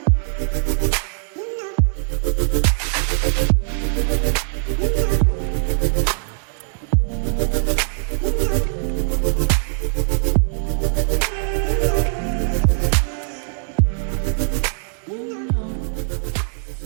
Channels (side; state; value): left; silent; digital silence